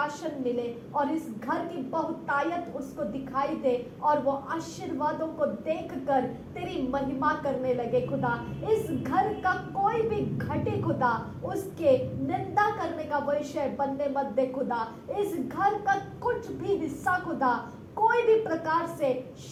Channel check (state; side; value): identical; both; correlation 1.00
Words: मिले और इस घर की बहुतायत उसको दिखाई दे और वो आशीर्वादों को देखकर तेरी महिमा करने लगे खुदा। इस घर का कोई भी घटे खुदा, उसके निंदा करने का विषय बनने मत दे खुदा। इस घर का कुछ भी हिस्सा खुदा कोई भी प्रकार से